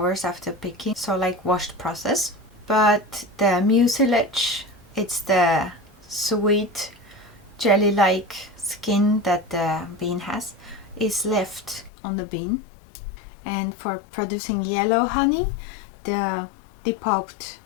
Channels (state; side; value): drops out; right; at 11.9 s